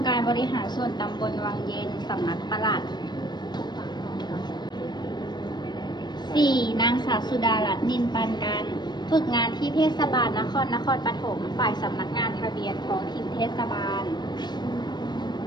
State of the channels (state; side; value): late; right; 0.21 ms